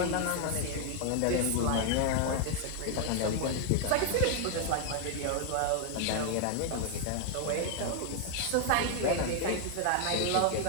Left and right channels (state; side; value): different; both; correlation 0.01